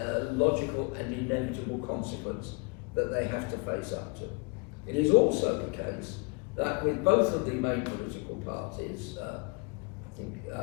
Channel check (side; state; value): right; quieter; 31.9 dB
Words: logical and inevitable consequence that they have to face up to. It is also the case that with both of the main political parties, I think